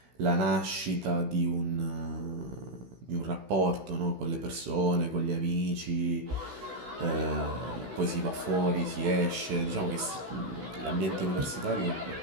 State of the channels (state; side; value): late; left; 16 ms